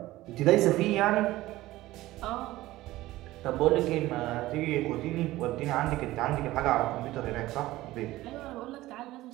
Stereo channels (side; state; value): left; quieter; 17.1 dB